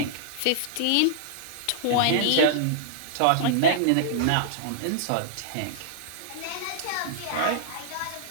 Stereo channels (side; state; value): both; different; correlation -0.01